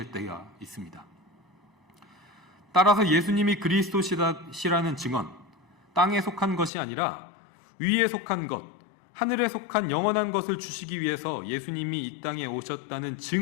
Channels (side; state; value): right; drops out; at 6.7 s